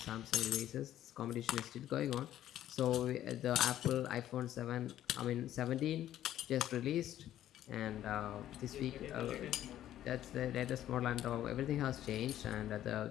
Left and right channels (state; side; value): quieter; right; 12.3 dB